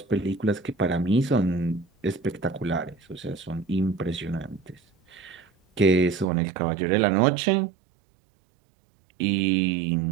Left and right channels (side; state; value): left; drops out; at 6.2 s